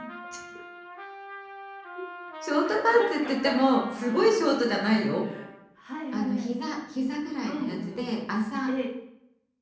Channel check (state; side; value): identical; both; correlation 1.00